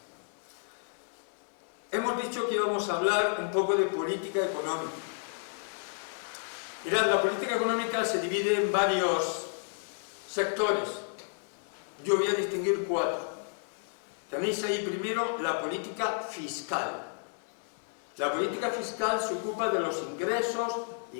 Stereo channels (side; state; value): right; silent; digital silence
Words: Hemos dicho que íbamos a hablar un poco de política económica. Mirad, la política económica se divide en varios sectores. Yo voy a distinguir 4. Tenéis ahí primero la política fiscal. La política fiscal se ocupa de los ingresos y